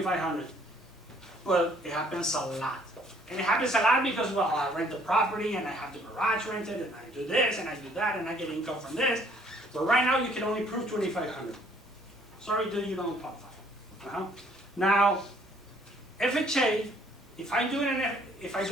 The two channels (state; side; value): normal; both; correlation 0.61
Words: But it happens a lot. And it happens a lot because, well, I rent the property and I have the garage rented and I do this and I do that and I get income from this. But right now you can only prove $2,500. Sorry, dude, you don't qualify. Now, FHA, if I do it in